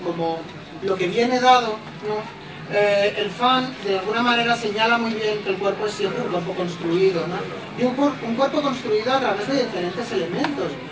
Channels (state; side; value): identical; both; correlation 1.00